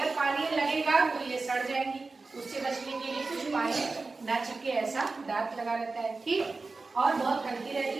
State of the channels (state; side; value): quieter; left; 3.8 dB